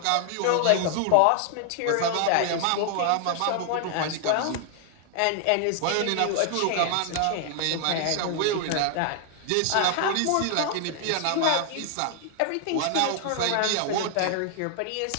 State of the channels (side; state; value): both; different; correlation 0.00